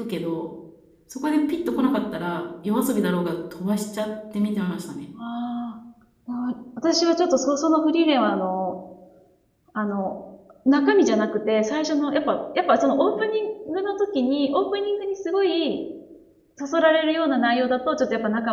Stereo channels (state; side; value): identical; both; correlation 1.00